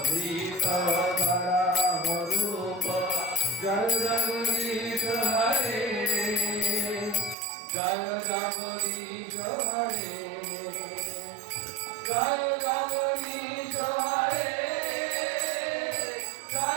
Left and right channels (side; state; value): left; drops out; at 7.4 s